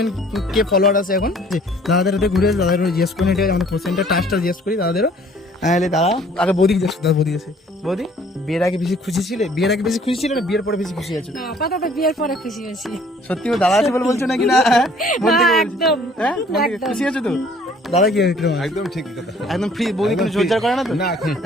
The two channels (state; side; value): normal; both; correlation 0.56